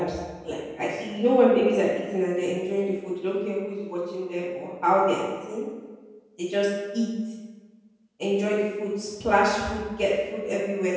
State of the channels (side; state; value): both; identical; correlation 1.00